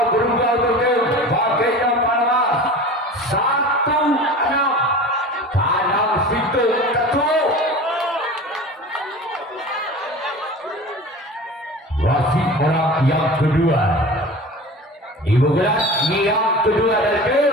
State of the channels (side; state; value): both; normal; correlation 0.36